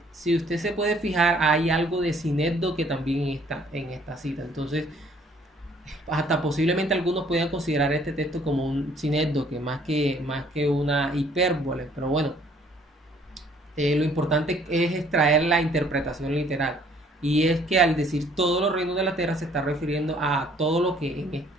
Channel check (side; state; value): both; normal; correlation 0.60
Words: Si usted se puede fijar, hay algo de sinécdoque también está en esta cita. Entonces, hasta posiblemente algunos puedan considerar este texto como un sinécdoque más que una hipérbole. Pero bueno, lo importante es extraer la interpretación literal. Y es que al decir todos los reinos de la tierra se está refiriendo a todo lo que